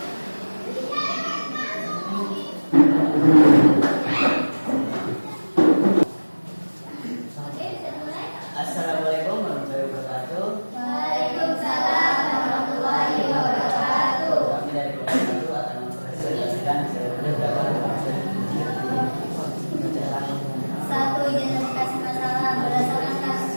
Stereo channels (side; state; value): both; inverted; correlation -1.00